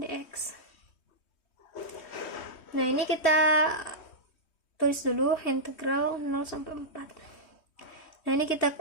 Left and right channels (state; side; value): late; right; 3.2 ms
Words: Nah, ini kita tulis dulu integral 0 sampai 4. Nah, ini kita